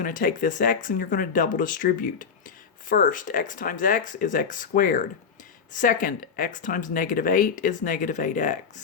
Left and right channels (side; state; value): right; quieter; 6.3 dB